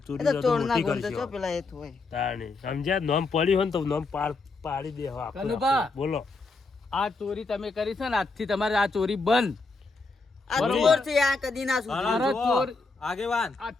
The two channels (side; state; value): right; quieter; 3.7 dB